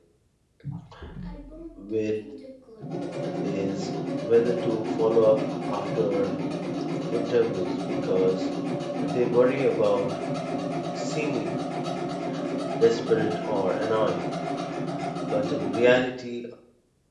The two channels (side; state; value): both; identical; correlation 1.00